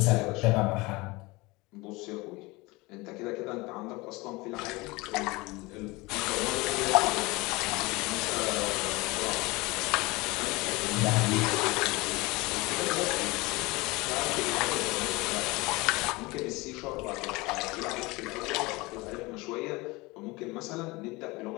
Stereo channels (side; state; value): right; quieter; 23.3 dB